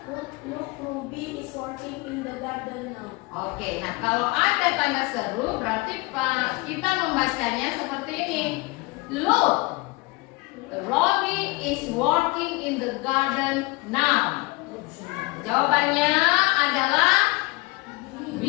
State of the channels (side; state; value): right; quieter; 24.1 dB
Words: working in the garden now. Oke, nah kalau ada tanda seru berarti kita membacanya seperti ini. Look, Robbie is working in the garden now. Jawabannya adalah B.